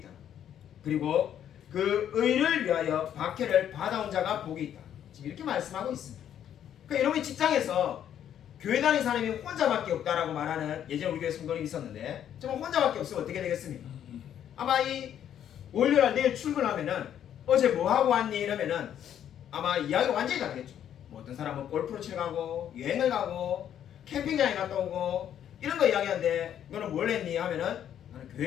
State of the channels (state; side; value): quieter; right; 10.0 dB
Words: 그리고 그 의를 위하여 박해를 받아온 자가 복이 있다. 지금 이렇게 말씀하고 있습니다. 그러니까 여러분이 직장에서 교회 다니는 사람이 혼자밖에 없다라고 말하는 예전 우리 교회 성도님이 있었는데 정말 혼자밖에 없으면 어떻게 되겠습니까? 아마 이 월요일 내일 출근하면은 어제 뭐 하고 왔니? 이러면은 아마 이야기가 완전히 다르겠죠. 뭐 어떤 사람은 골프를 치러 가고 여행을 가고 캠핑장에 갔다 오고 이런 거 이야기하는데 너는 뭘 했니? 하면은 나는